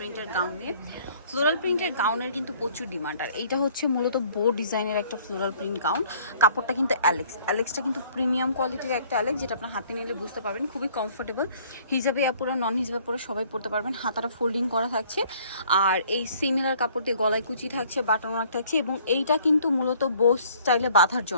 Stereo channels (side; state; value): both; inverted; correlation -0.58